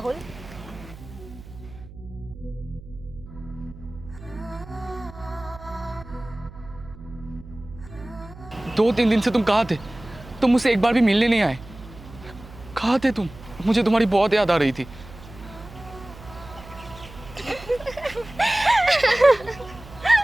दो तीन दिन से तुम कहाँ थे? तुम मुझसे एक बार भी मिलने नहीं आए। कहाँ थे तुम? मुझे तुम्हारी बहुत याद आ रही थी।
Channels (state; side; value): noise; right; hum, 17 dB below the sound